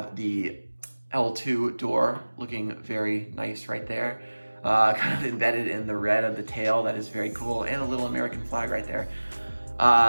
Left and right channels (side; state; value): both; inverted; correlation -1.00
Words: the L2 door, looking very nice right there. Kind of embedded in the red of the tail, that is very cool, and a little American flag right there.